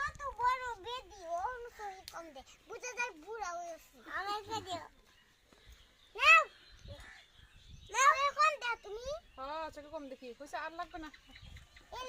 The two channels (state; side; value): identical; both; correlation 1.00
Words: তো বড় বেদি ও অনুসরি কম দে বুঝা যায় বুড়া হয়েছে আমাকে দিও নাও নাও এখন দাও তুমি হ্যাঁ চোখে কম দেখি কইছে, আর লাগবে না। এই